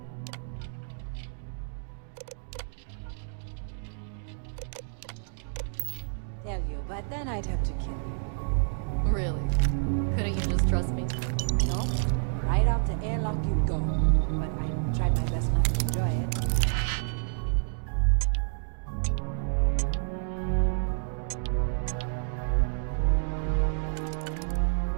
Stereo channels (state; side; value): silent; left; digital silence